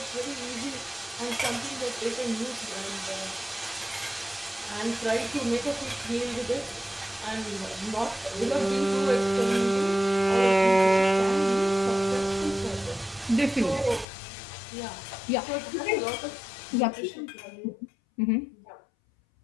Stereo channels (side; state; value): right; drops out; at 14.1 s